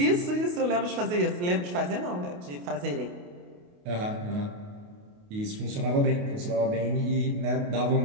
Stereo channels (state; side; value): late; left; 28 ms